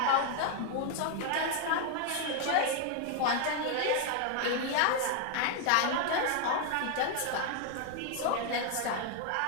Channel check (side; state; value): both; different; correlation 0.01